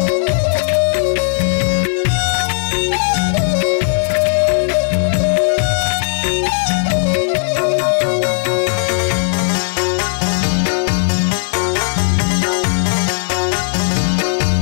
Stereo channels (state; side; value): silent; right; 67 dB below the other